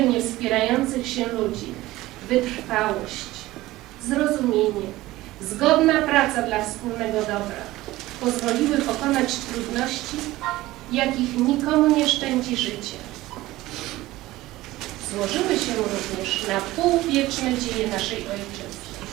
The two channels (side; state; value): left; quieter; 17.5 dB